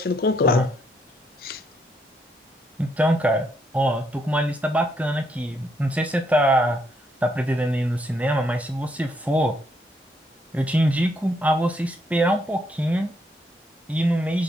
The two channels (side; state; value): both; normal; correlation 0.74